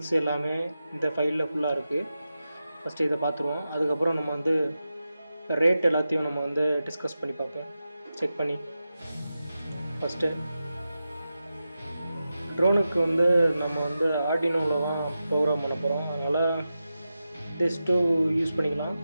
எல்லாமே இந்த ஃபைலில் ஃபுல்லாக இருக்குது. ஃபஸ்ட்டு இதை பார்த்துருவோம். அதுக்கப்புறம் நம்ம வந்து ரேட் எல்லாத்தையும் நம்ம வந்து டிஸ்கஸ் பண்ணி பார்ப்போம், செக் பண்ணி. ஃபஸ்ட்டு ட்ரோனுக்கு வந்து நம்ம வந்து ஆர்டினோவில் தான் ப்ரோக்ராம் பண்ண போகிறோம். அதனால் திஸ் டூ யூஸ் பண்ணிக்கலாம்.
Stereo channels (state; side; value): inverted; both; correlation -0.91